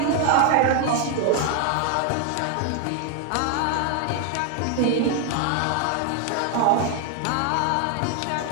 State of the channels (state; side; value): different; both; correlation 0.00